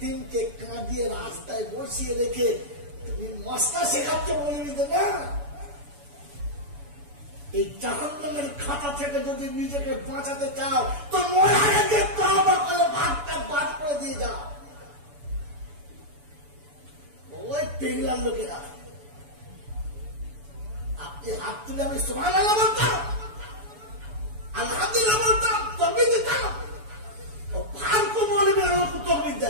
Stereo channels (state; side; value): late; left; 7.0 ms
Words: কাঁদিয়ে রাস্তায় বসিয়ে রেখে তুমি মশলা শেখাচ্ছ বলে দিতে না। এই জাহান্নামের খাতা থেকে যদি নিজেকে বাঁচাতে চাও তো মরার আগে তওবা করে ভাগটা বাদ করে দিয়ে যাও। ওই টেংলার লোকেরা আপনি হাত তুলে আমি সুবহানাল্লাহ বলতাম, আলহামদুলিল্লাহ বলতাম, তকবীর দিতাম, ও ফালতু মৌলবীরা আমাকে তকবীর